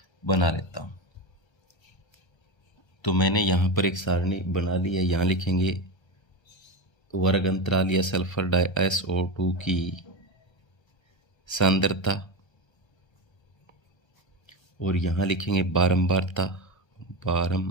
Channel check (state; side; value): late; right; 1.3 ms